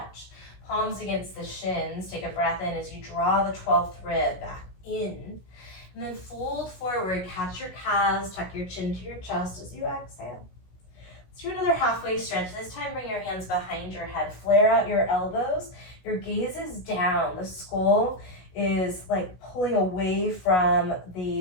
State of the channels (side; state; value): right; late; 16 ms